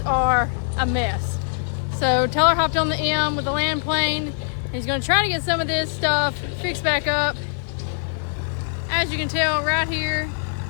are a mess. So Teller hopped on the M with the land plane. He's gonna try to get some of this stuff fixed back up. As you can tell right here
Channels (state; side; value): silent; right; 62 dB below the other